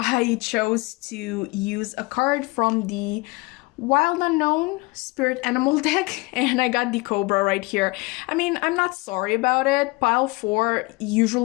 chose to use a card from the Wild Unknown Spirit Animal deck, and I got the Cobra right here. I mean, I'm not sorry about it. Pile 4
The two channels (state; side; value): quieter; right; 24.6 dB